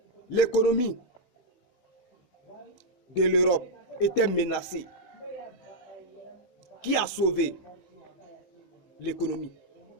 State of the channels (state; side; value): late; right; 16 ms